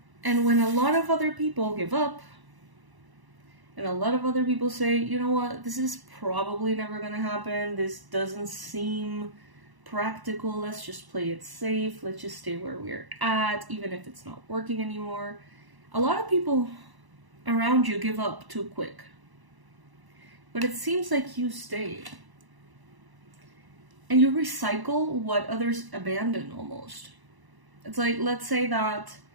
And when a lot of other people give up, and a lot of other people say, you know what, this is probably never gonna happen, this doesn't seem practical, let's just play it safe, let's just stay where we're at, even if it's not working anymore. A lot of people around you give up too quick. But it seems like you stay. And you recycle what others abandon almost. It's like, let's say that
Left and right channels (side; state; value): left; late; 1.0 ms